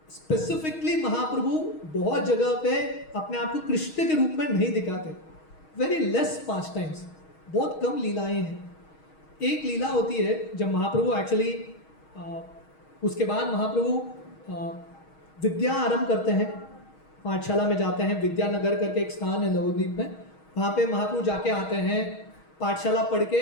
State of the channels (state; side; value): late; right; 6.3 ms